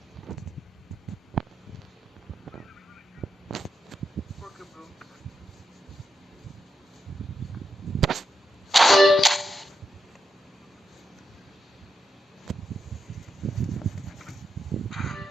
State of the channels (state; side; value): normal; both; correlation 0.85